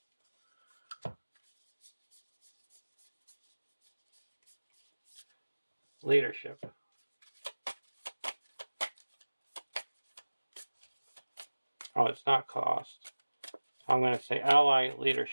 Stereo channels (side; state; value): both; inverted; correlation -1.00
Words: Leadership. Oh, it's not cost. I'm going to say ally